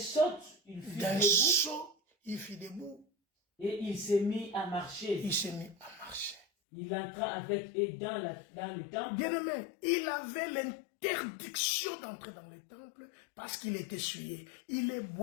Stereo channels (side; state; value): right; drops out; at 6.5 s